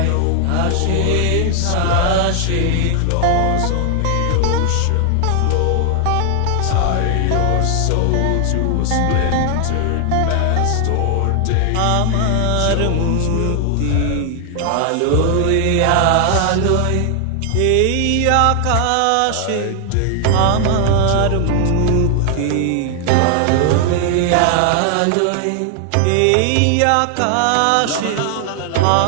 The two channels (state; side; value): different; both; correlation 0.00